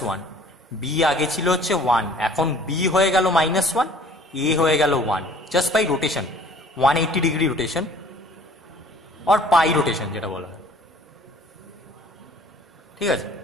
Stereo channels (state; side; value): normal; both; correlation 0.52